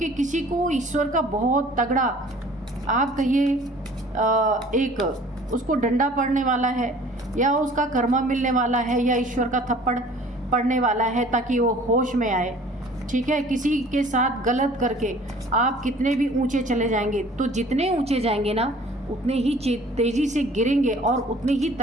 किसी को ईश्वर का बहुत तगड़ा, आप कहिए एक उसको डंडा पड़ने वाला है, या उसका कर्मा मिलने वाला है, या ईश्वर का थप्पड़ पड़ने वाला है ताकि वो होश में आए, ठीक है। किसी के साथ गलत करके आप कितने भी ऊंचे चले जाएंगे, तो जितने ऊंचे जाएंगे ना उतने ही तेज़ी से गिरेंगे और उतनी ही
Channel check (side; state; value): both; normal; correlation 0.50